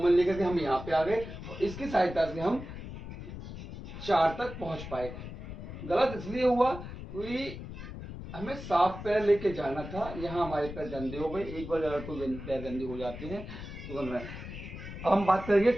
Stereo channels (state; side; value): noise; left; rumble, 10 dB below the sound